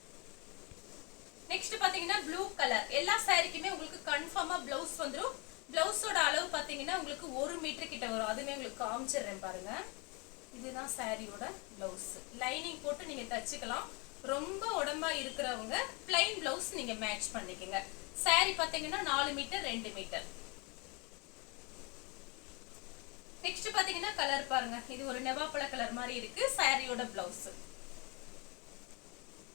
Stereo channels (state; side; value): quieter; right; 29.7 dB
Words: நெக்ஸ்ட் பாத்தீங்கன்னா ப்ளூ கலர். எல்லா சாரிக்குமே உங்களுக்கு கன்ஃபார்மா பிளவுஸ் வந்துடும். பிளவுஸோட அளவு பாத்தீங்கன்னா உங்களுக்கு 1 மீட்டர் கிட்ட வரும். அதுமே உங்களுக்கு காமிச்சிடுறேன் பாருங்க. இதுதான் சாரியோட பிளவுஸ். லைனிங் போட்டு நீங்க தச்சுக்கலாம். ரொம்ப உடம்பா இருக்கிறவங்க பிளைன் பிளவுஸ் நீங்க மேட்ச் பண்ணிக்கங்க. சாரி பாத்தீங்கன்னா 4 மீட்டர் 2 மீட்டர். நெக்ஸ்ட் பாத்தீங்கன்னா கலர் பாருங்க, இது ஒரு நெவாப்பழ கலர் மாதிரி இருக்கு. சாரியோட பிளவுஸ்.